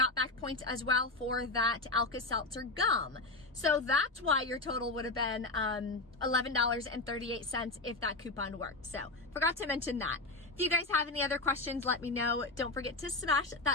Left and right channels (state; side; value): quieter; right; 3.1 dB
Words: back points as well for that Alka-Seltzer gum. So that's why your total would have been $11.38 if that coupon worked. So forgot to mention that. If you guys have any other questions, let me know. Don't forget to smash